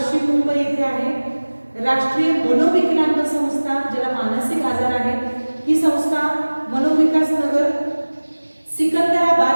मुंबई येथे आहे. राष्ट्रीय मनोविकलांग संस्था, ज्याला मानसिक आजार आहे, ही संस्था मनोविकास नगर सिकंदराबाद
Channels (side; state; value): both; inverted; correlation -1.00